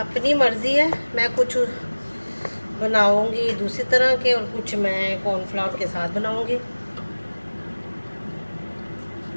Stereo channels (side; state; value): both; inverted; correlation -1.00